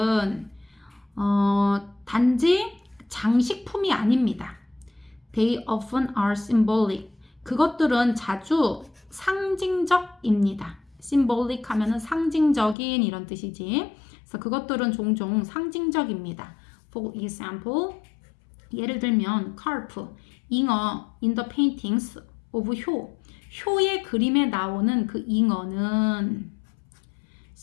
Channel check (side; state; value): right; drops out; at 12.8 s